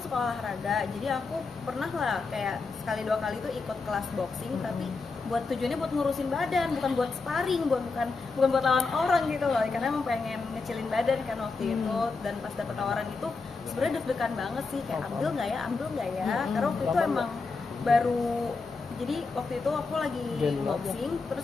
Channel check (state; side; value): quieter; right; 4.2 dB